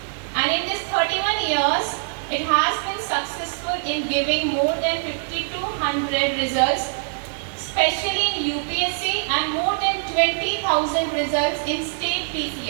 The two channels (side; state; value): left; silent; 63 dB below the other